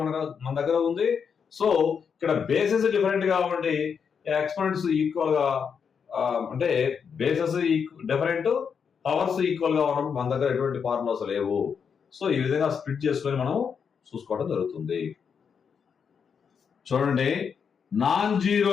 మన దగ్గర ఉంది. సో ఇక్కడ బేసెస్ డిఫరెంట్ గా ఉండి ఎక్స్పోనెంట్స్ ఈక్వల్ గా అంటే బేసెస్ డిఫరెంట్, పవర్స్ ఈక్వల్ గా ఉన్నప్పుడు మన దగ్గర ఎటువంటి ఫార్ములాస్ లేవు. సో ఈ విధంగా స్ప్లిట్ చేసుకొని మనం చూసుకోవడం జరుగుతుంది. చూడండి, నాన్ జీరో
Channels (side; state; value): right; quieter; 6.6 dB